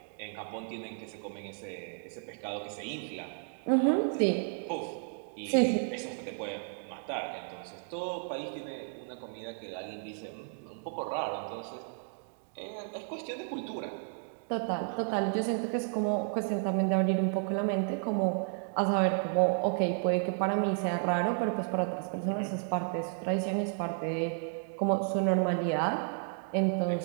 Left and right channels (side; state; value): left; silent; 56 dB below the other